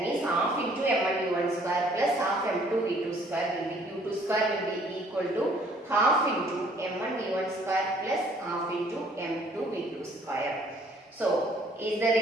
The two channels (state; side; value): normal; both; correlation 0.60